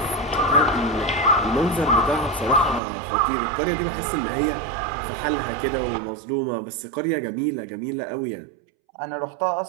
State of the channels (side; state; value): left; drops out; at 2.8 s